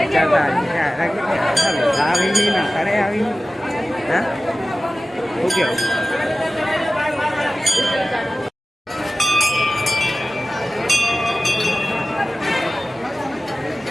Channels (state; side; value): normal; both; correlation 0.95